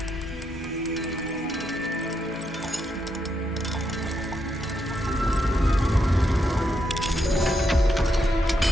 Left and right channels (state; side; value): normal; both; correlation 0.80